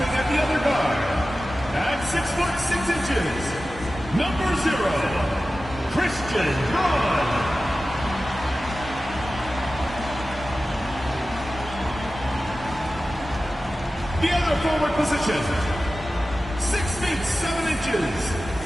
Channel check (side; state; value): both; normal; correlation 0.95